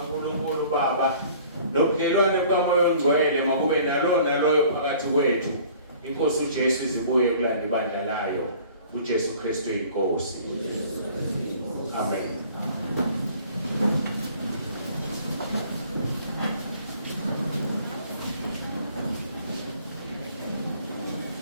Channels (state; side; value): inverted; both; correlation -0.51